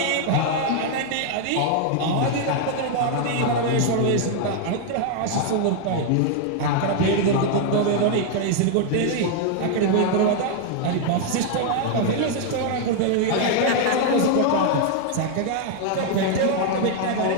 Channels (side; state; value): both; different; correlation 0.00